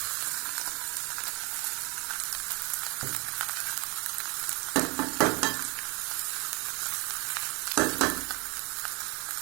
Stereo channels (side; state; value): left; quieter; 28.2 dB